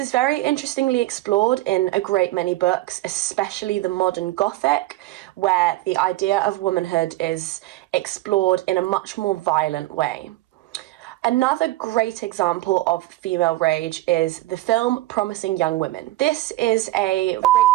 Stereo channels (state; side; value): quieter; left; 17.0 dB